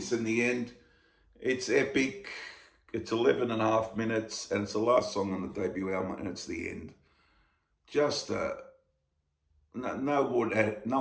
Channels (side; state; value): both; identical; correlation 1.00